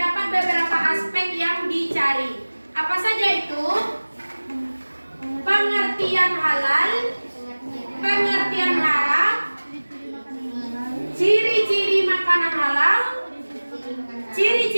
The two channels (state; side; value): inverted; both; correlation -1.00